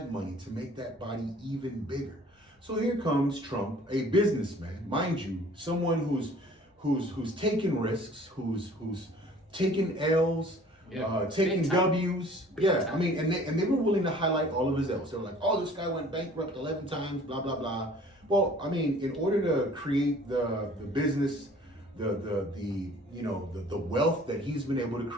money to make that body even bigger. So here comes Trump, a businessman, mind you, someone who's taking risks, who's taking L's, taking W's. Yeah, I mean, and they were willing to highlight all of his L's. They were like, oh, this guy went bankrupt 11 times, blah blah blah. Well, I mean, in order to create the business, the wealth that he's been able to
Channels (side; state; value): both; normal; correlation 0.51